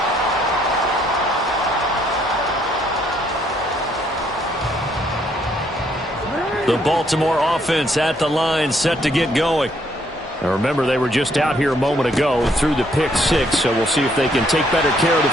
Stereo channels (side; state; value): both; normal; correlation 0.69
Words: The Baltimore offense at the line, set to get going. Now remember, they were just out here a moment ago through the pick 6, so we'll see if they can take better care of the